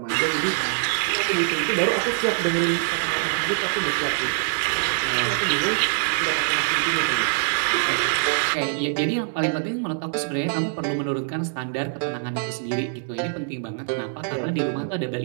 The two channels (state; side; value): silent; left; 63 dB below the other